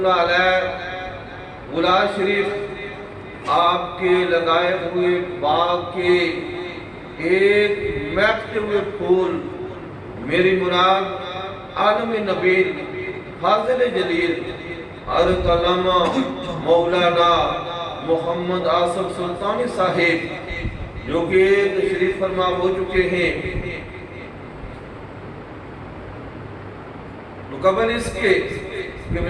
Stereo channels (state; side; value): identical; both; correlation 1.00